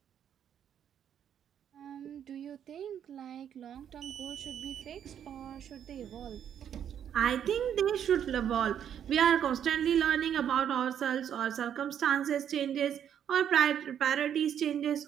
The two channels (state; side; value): quieter; left; 9.2 dB